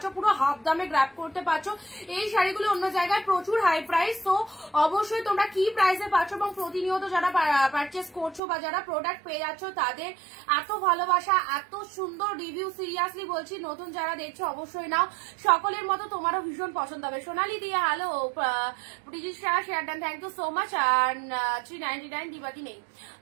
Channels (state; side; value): drops out; left; at 8.4 s